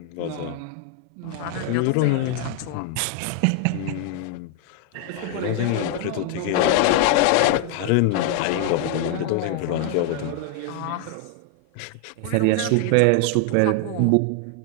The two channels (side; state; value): both; different; correlation 0.00